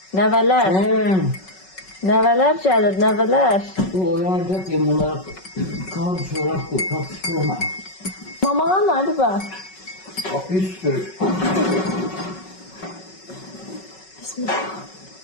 nəvələr. Nəvələr gəlir, nəvələr. Bu oyanacak ya bunlar kan çorap bu, tatlı. Mamağa nerede bak? Bak bir sürü. Bismillah.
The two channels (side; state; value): right; late; 5.3 ms